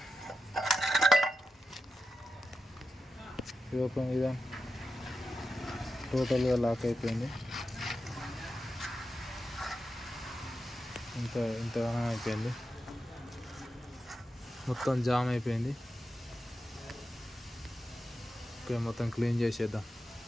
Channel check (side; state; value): both; normal; correlation 0.90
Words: ఓపెన్ ఇదా టోటల్గా లాక్ అయిపోయింది. ఇంతగానో అయిపోయింది, మొత్తం జామ్ అయిపోయింది. ఓకే, మొత్తం క్లీన్ చేసేద్దాం.